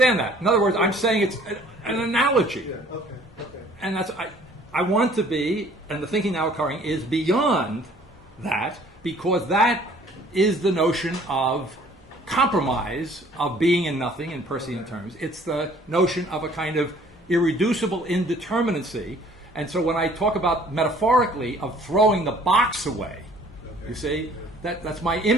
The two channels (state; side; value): normal; both; correlation 0.55